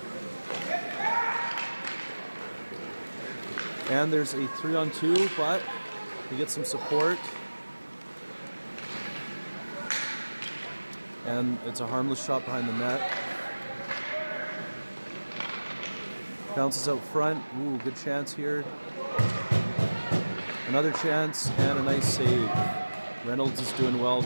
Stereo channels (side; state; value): both; inverted; correlation -1.00